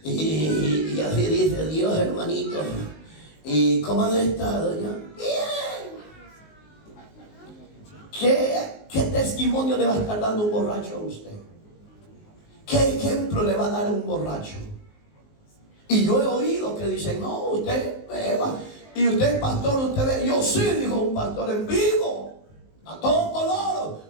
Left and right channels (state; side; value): late; right; 19 ms